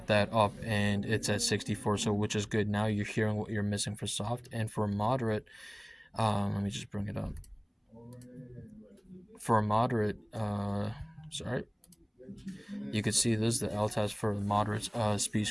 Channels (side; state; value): both; identical; correlation 1.00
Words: that up and it's at 64, so which is good. Now you're hearing what you're missing for soft, and for moderate, let me just bring it up. For a moderate, sorry, you could see this is the LTAS for the moderate